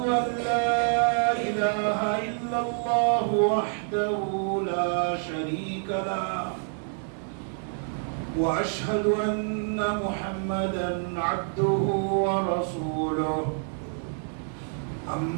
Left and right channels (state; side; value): silent; left; 60 dB below the other